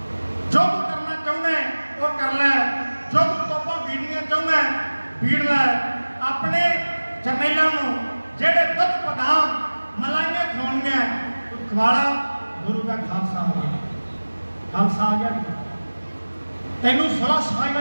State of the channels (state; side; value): inverted; both; correlation -1.00